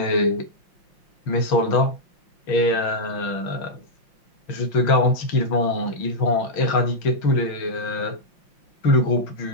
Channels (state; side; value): late; right; 5.6 ms